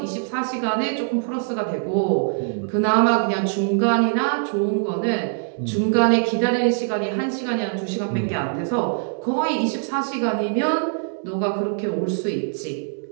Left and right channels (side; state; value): left; silent; 64 dB below the other